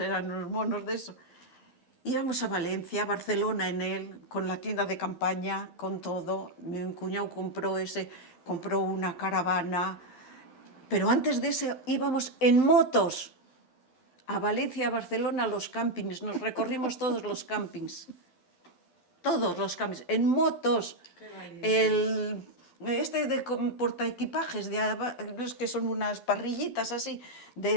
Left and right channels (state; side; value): late; right; 12 ms